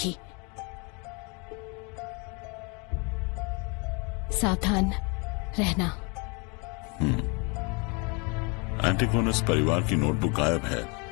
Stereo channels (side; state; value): right; quieter; 31.8 dB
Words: सावधान रहना। एंटीगोनस परिवार की नोटबुक गायब है।